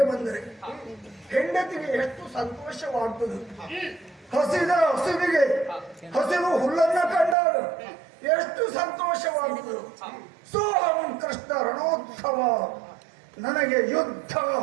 ಬಂದರೆ ಹೆಂಡತಿಗೆ ಎಷ್ಟು ಸಂತೋಷವಾಗ್ತದೆ. ಹಸಿದ ಹಸುವಿಗೆ ಹಸಿರು ಹುಲ್ಲನ್ನ ಕಂಡಾಗ ಎಷ್ಟು ಸಂತೋಷವಾಗ್ತದೆ. ಸೋಹಂ ಕೃಷ್ಣ ರಣೋತ್ಸವ, ನನಗೆ ಯುದ್ಧ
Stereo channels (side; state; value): left; drops out; at 7.4 s